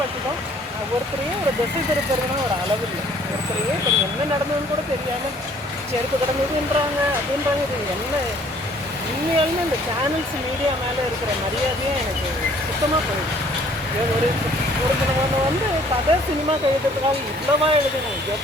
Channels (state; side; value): normal; both; correlation 0.58